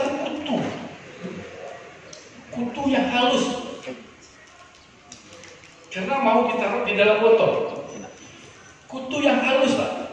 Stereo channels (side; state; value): both; identical; correlation 1.00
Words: kutu yang halus, karena mau ditaruh di dalam botol. Kutu yang halus Pak.